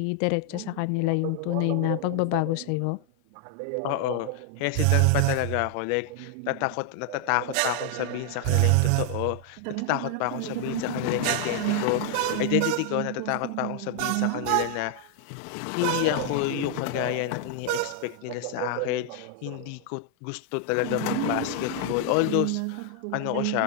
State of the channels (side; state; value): both; different; correlation 0.00